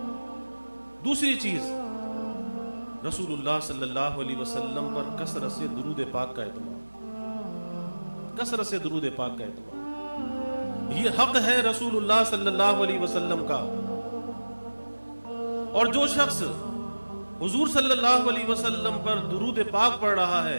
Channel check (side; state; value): both; inverted; correlation -1.00